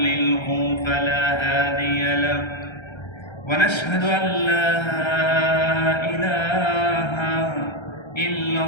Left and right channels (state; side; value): late; right; 1.3 ms